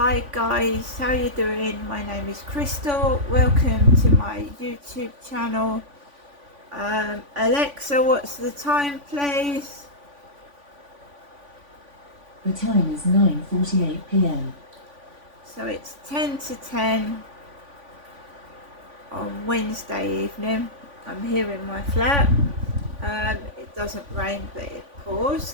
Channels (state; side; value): late; left; 3.5 ms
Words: guys, how you doing? My name is Crystal. Welcome to my YouTube channel. Alexa, what's the time, please? The time is 9:48 p.m. So it's 10 to 10 on Wednesday evening. I'm here in my flat. It doesn't rain, but it